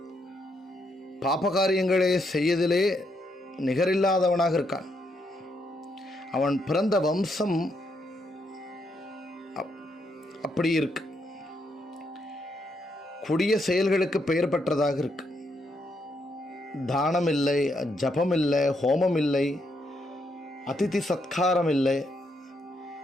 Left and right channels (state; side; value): normal; both; correlation 0.77